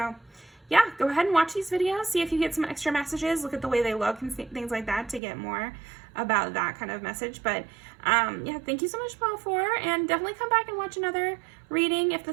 yeah, go ahead and watch these videos. See if you get some extra messages. Look at the way they look and things like that to get more about that kind of message. But yeah, thank you so much, pile 4. And definitely come back and watch another reading. If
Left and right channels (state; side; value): drops out; left; at 5.2 s